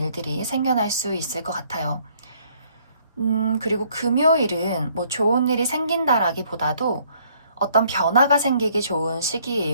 생겨날 수 있을 것 같아요. 그리고 금요일은 좋은 일이 생긴다라기보다도 어떤 변화가 생기기 좋은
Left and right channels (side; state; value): both; inverted; correlation -0.64